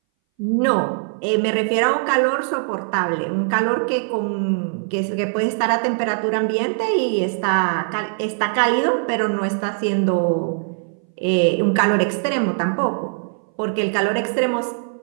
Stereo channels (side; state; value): left; silent; 61 dB below the other